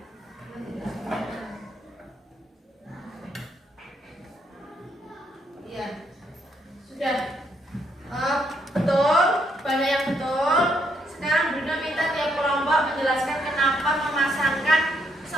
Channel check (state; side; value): normal; both; correlation 0.74